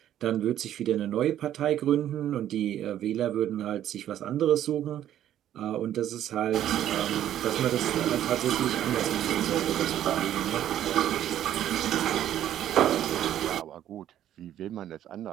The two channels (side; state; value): left; quieter; 11.5 dB